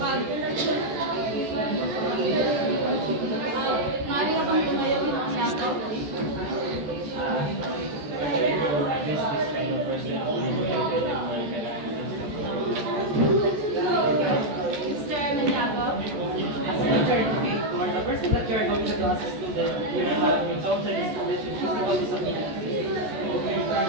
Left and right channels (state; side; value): late; left; 14 ms